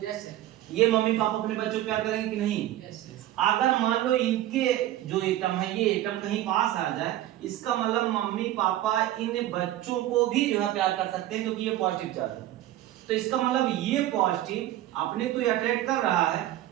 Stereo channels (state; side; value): quieter; left; 14.0 dB